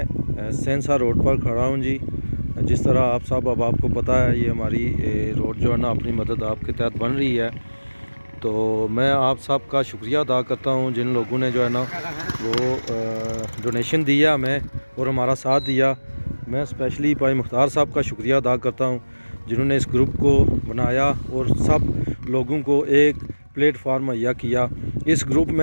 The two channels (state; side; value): inverted; both; correlation -1.00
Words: सेंसा रोड पर खड़ा हूँ जी। जिस तरह आप सब अहबाब को पता है, ये हमारी रोड जो है ना अपनी मदद आपके तहत बन रही है। तो मैं आप सब का शुक्रिया अदा करता हूँ जिन लोगों ने जो है ना वो डोनेशन दिया हमें और हमारा साथ दिया। मैं स्पेशली भाई मुख्तार साहब का शुक्रिया अदा करता हूँ जिन्होंने इस ग्रुप को बनाया और सब लोगों को एक प्लेटफार्म मुहैया किया। इस ग्रुप